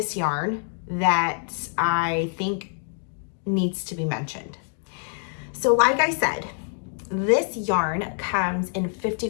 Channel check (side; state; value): right; silent; 61 dB below the other